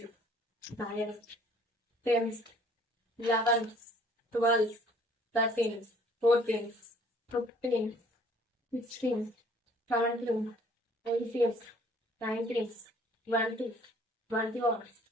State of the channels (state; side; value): normal; both; correlation 0.57